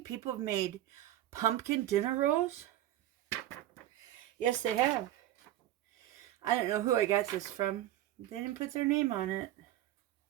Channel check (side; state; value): left; quieter; 13.6 dB